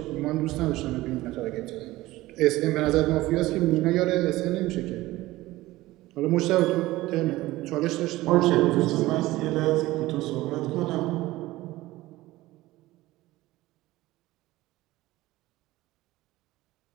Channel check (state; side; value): quieter; left; 17.8 dB